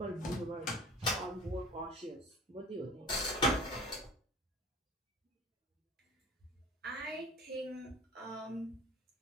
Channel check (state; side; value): normal; both; correlation 0.42